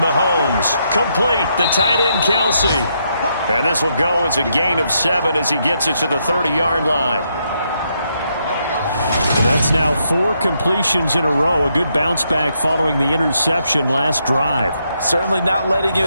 Complete, the tight end Kelsey. And this will go as a gain of 7 as he gets it to the 30-yard line. That's now 4 completions in a row. A good bounce back following the interception last drive. Certainly not letting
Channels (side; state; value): both; inverted; correlation -0.78